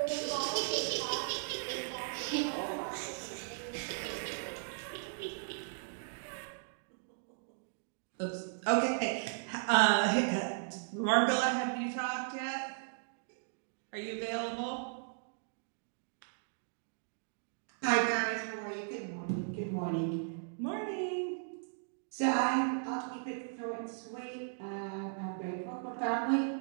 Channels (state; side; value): silent; left; digital silence